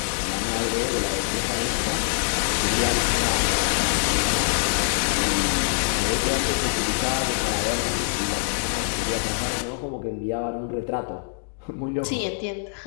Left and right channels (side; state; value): right; silent; digital silence